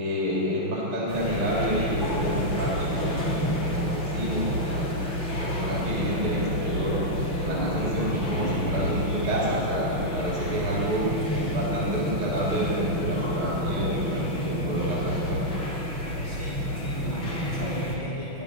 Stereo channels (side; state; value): left; late; 5.9 ms